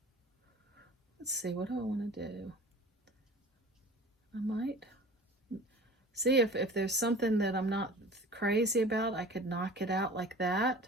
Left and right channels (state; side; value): normal; both; correlation 0.42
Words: Let's see, what do I want to do? I might see if there's something that I'm not crazy about, I could knock it out like that.